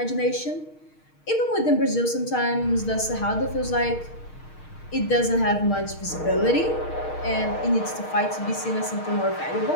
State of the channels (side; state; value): right; late; 6.4 ms